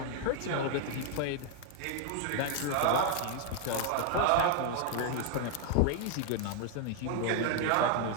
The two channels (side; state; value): both; different; correlation 0.00